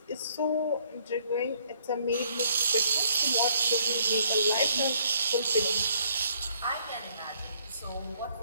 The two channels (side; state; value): both; inverted; correlation -0.65